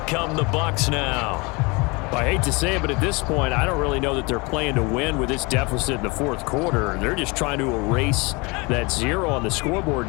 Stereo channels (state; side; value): quieter; right; 27.1 dB